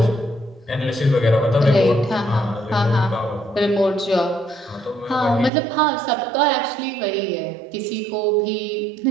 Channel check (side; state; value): left; drops out; at 5.5 s